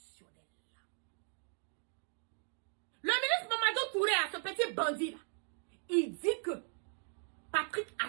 Le ministre Mamadou Touré, ce petit bandit là, il dit que Patrick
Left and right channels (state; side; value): silent; left; 52 dB below the other